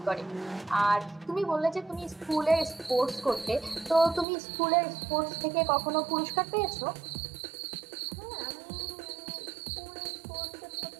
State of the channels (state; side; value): drops out; left; at 4.2 s